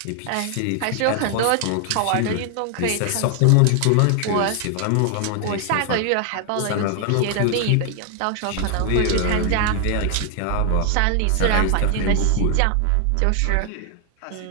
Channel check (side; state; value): both; different; correlation 0.00